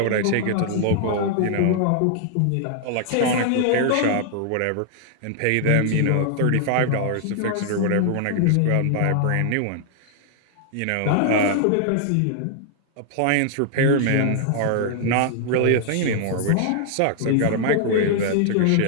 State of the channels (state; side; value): different; both; correlation 0.00